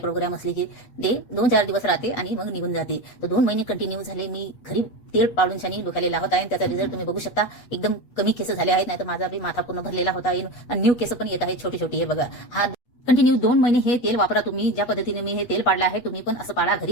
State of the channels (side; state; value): right; late; 8.3 ms